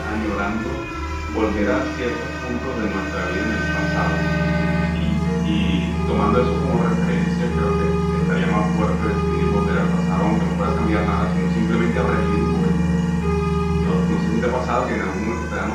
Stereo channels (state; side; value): identical; both; correlation 1.00